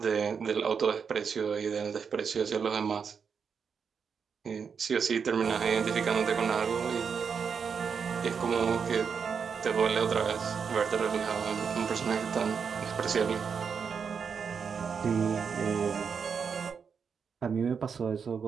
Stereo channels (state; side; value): quieter; left; 6.3 dB